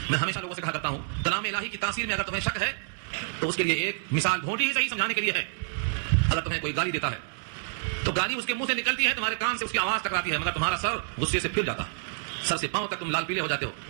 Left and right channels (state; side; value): silent; left; digital silence